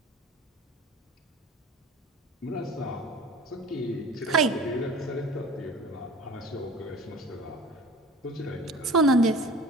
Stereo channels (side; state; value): both; normal; correlation 0.42